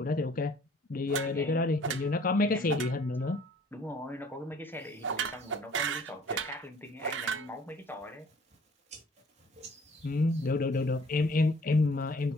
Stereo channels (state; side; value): normal; both; correlation 0.55